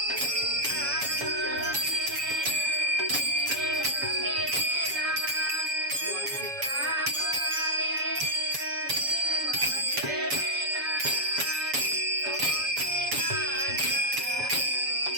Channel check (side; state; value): left; late; 7.1 ms